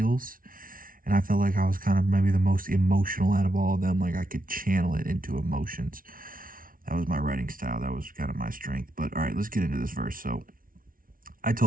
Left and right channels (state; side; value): late; left; 0.41 ms